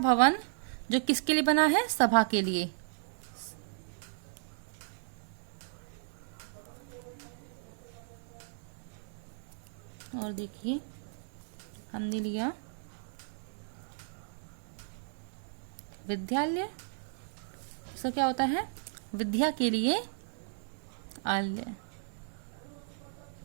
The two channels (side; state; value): left; silent; 55 dB below the other